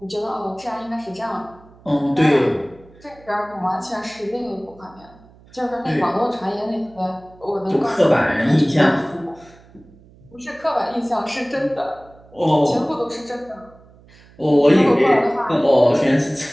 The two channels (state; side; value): noise; right; hum, 26 dB below the sound